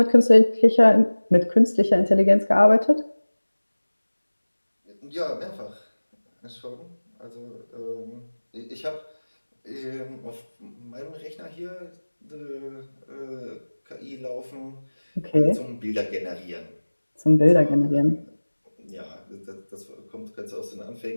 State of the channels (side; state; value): both; inverted; correlation -1.00